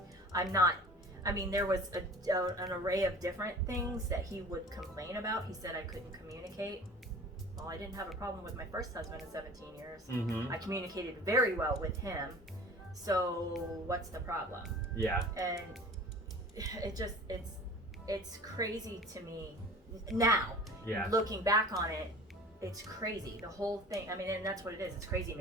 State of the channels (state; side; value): normal; both; correlation 0.43